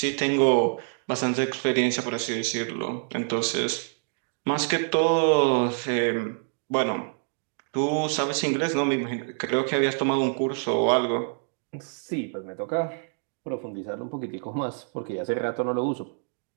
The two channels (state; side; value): silent; left; digital silence